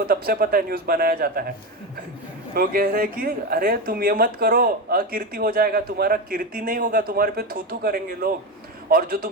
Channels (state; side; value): normal; both; correlation 0.17